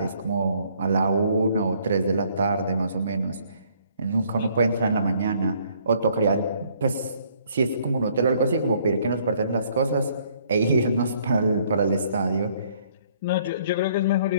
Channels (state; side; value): inverted; both; correlation -0.63